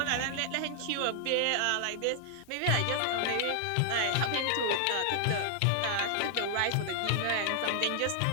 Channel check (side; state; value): both; different; correlation 0.00